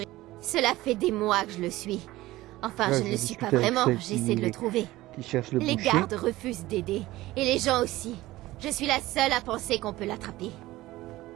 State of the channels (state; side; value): quieter; left; 17.5 dB